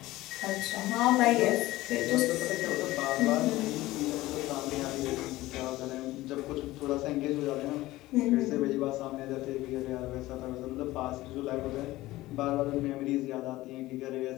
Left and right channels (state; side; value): quieter; right; 17.6 dB